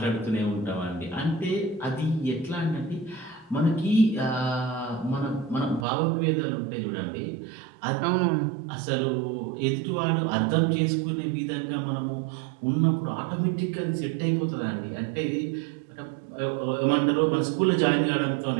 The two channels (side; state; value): left; drops out; at 5.9 s